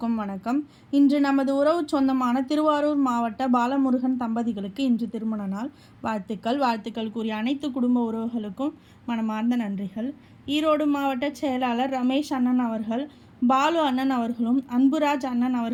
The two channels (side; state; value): both; identical; correlation 1.00